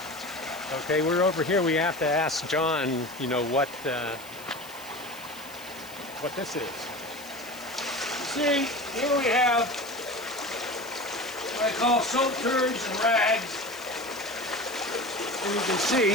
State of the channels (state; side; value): noise; left; hiss, 18 dB below the sound